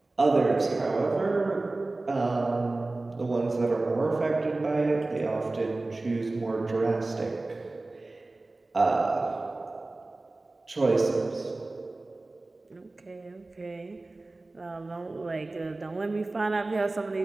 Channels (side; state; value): left; quieter; 3.1 dB